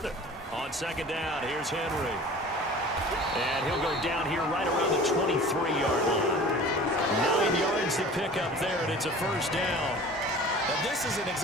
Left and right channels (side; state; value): both; normal; correlation 0.42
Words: it. On 2nd down, here's Henry. And he'll go down here right around the 23-yard line. 9 yards to pick up there, and it's a 1st down. Now, this is an